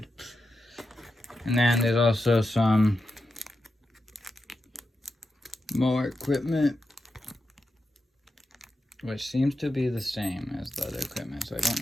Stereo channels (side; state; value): both; normal; correlation 0.88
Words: And then there's also some more equipment, which seems to be the same as the other equipment, so I don't